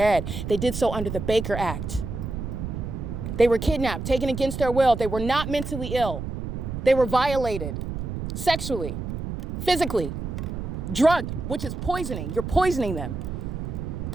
They did so under the Baker Act. They were kidnapped, taken against their will. They were not mentally ill. They were violated sexually, physically, drugged, which is poisoning. You're poisoning them.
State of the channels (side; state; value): right; noise; rumble, 5 dB below the sound